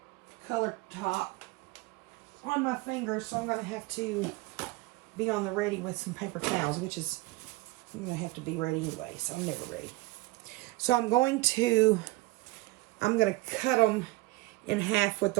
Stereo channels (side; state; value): left; quieter; 20.8 dB